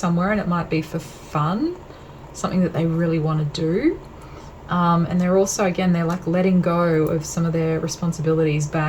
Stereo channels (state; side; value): identical; both; correlation 1.00